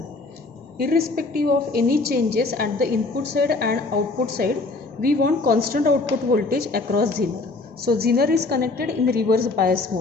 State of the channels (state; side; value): quieter; right; 3.5 dB